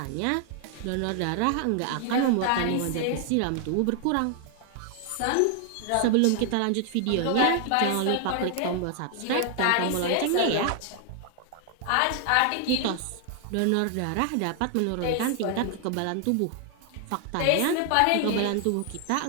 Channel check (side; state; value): both; different; correlation 0.00